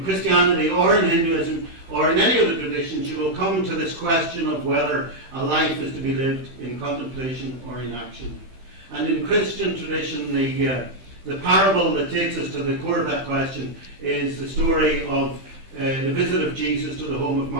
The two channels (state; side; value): late; left; 15 ms